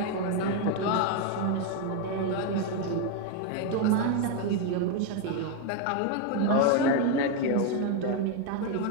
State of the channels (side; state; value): both; different; correlation 0.01